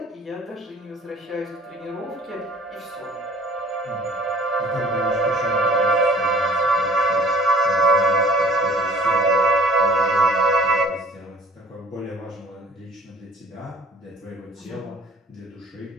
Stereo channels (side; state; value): both; normal; correlation 0.49